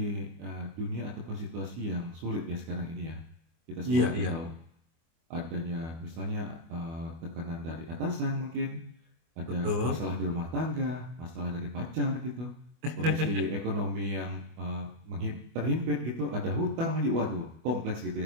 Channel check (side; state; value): left; late; 24 ms